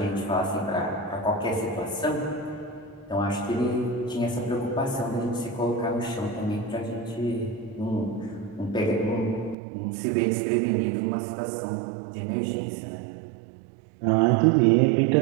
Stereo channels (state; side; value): drops out; left; at 9.6 s